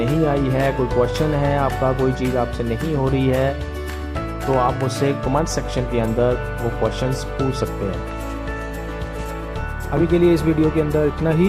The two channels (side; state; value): both; identical; correlation 1.00